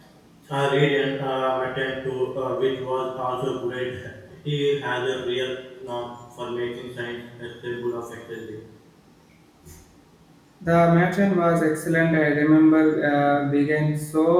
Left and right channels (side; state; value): both; identical; correlation 1.00